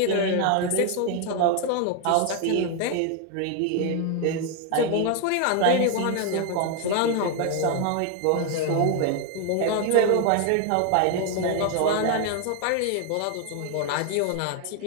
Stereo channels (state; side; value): different; both; correlation 0.01